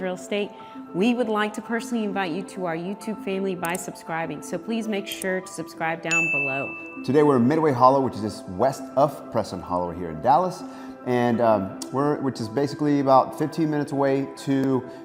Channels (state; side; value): identical; both; correlation 1.00